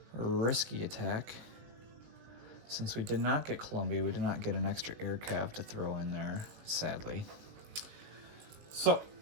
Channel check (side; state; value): left; late; 19 ms